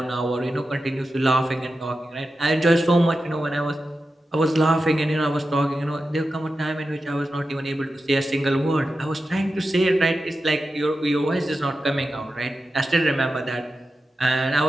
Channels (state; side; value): normal; both; correlation 0.91